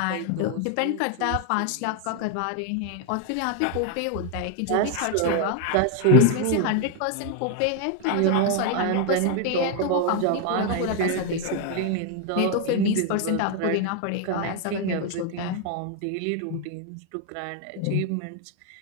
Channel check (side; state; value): both; different; correlation 0.01